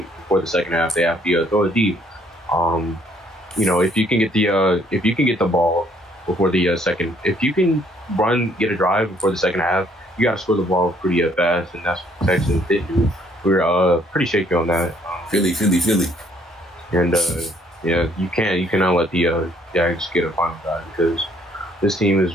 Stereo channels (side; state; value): both; normal; correlation 0.64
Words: before the second half. They have to throw it deep. If you can get the ball before the second, if you can get a drive before the second half, you got to score the ball pretty fast, and that's what the Texans did do. We're pretty shaky on that. Philly. And you cannot let the Jags get a final drive because this team is